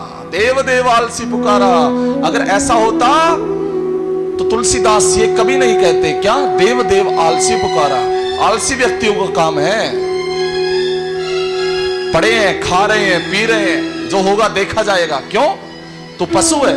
देव देव आलसी पुकारा। अगर ऐसा होता तो तुलसीदास ये कभी नहीं कहते, क्या? देव देव आलसी पुकारा। आलसी व्यक्तियों का काम है, पड़े हैं, खा रहे हैं, पी रहे हैं, जो होगा देखा जाएगा। क्यों? तो पशु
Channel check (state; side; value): identical; both; correlation 1.00